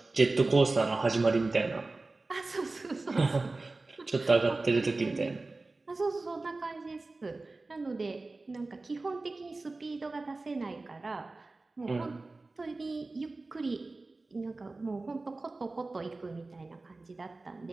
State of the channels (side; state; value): left; quieter; 3.3 dB